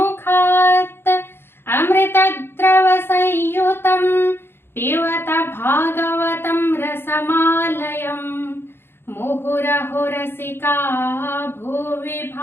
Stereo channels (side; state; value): right; late; 0.11 ms